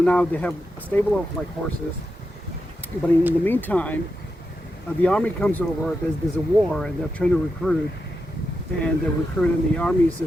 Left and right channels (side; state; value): both; normal; correlation 0.87